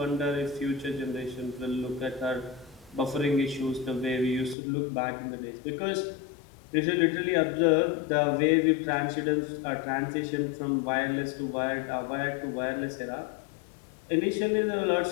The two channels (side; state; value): right; drops out; at 4.5 s